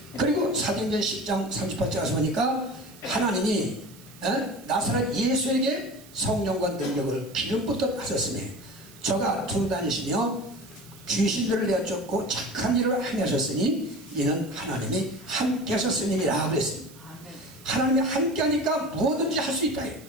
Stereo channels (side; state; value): right; noise; hiss, 22 dB below the sound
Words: 그리고 사도행전 10장 38절 가서 보니까 하나님이 나사렛 예수에게 성령과 능력을 기름부터 하셨으니 저가 두루 다니시며 귀신들을 내쫓고 착한 일을 행하셨으니 이는 하나님이 함께 하셨음이라 그랬습니다. 하나님이 함께 하니까 뭐든지 할 수 있다.